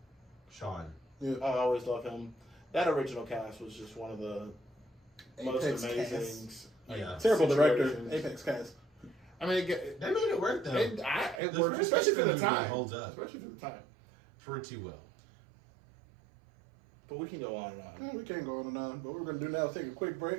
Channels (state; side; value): drops out; left; at 11.4 s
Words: Sean. Yeah. I always love him. That original cast was just one of the most Apex amazing. cast. Yeah. Terrible director. situations. Apex cast. I mean, They made it work though. it The worked, first especially for the X-Men movie time. holds up. Especially for the time. Pretty well. But we can go on and on. We can't go on and on, but what we're going to do now is take a quick